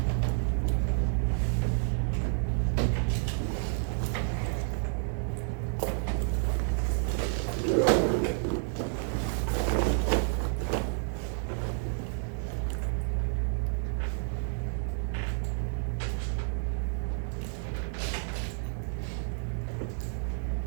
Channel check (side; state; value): left; silent; 58 dB below the other